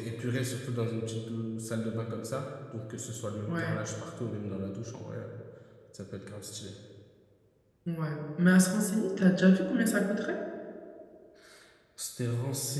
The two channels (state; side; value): identical; both; correlation 1.00